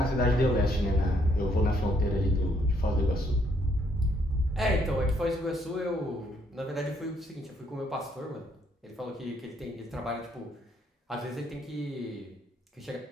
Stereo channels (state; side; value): normal; both; correlation 0.70